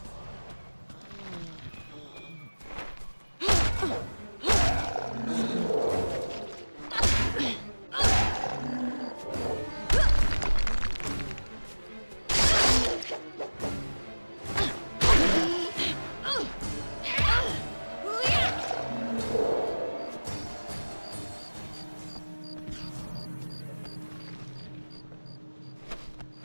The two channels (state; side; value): inverted; both; correlation -1.00